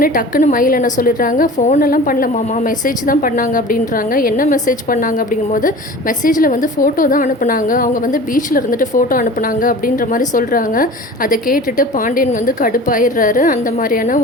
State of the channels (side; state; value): both; normal; correlation 0.39